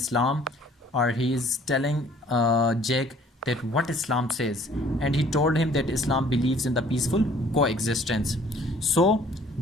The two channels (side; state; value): both; normal; correlation 0.56